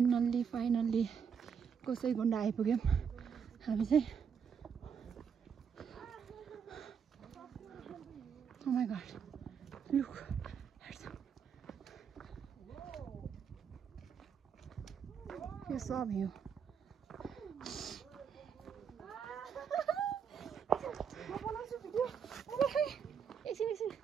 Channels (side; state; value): left; quieter; 6.9 dB